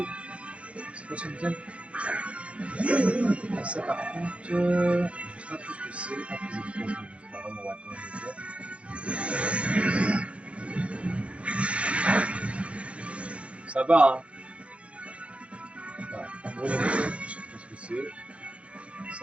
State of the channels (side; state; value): left; late; 0.061 ms